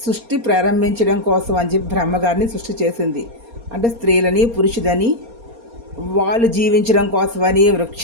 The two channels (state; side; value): late; left; 4.3 ms